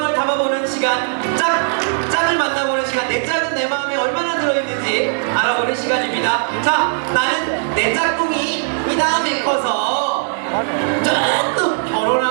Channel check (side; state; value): left; silent; digital silence